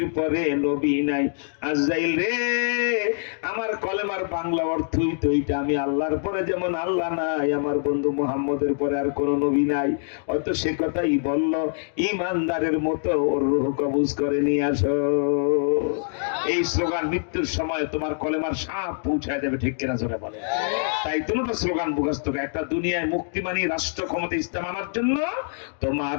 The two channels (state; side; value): silent; right; digital silence